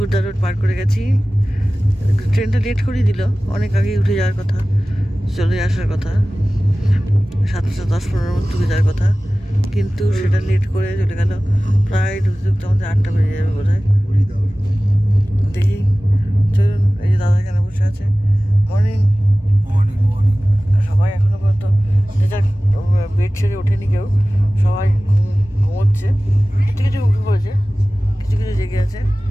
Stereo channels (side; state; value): both; normal; correlation 0.97